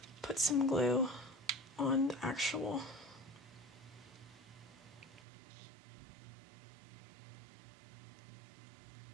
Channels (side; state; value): left; drops out; at 5.2 s